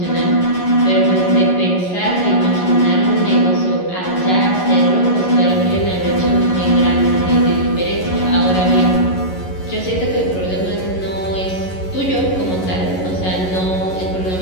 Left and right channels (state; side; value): late; right; 11 ms